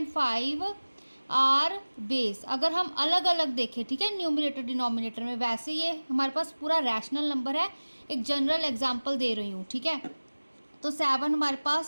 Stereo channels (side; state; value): both; inverted; correlation -1.00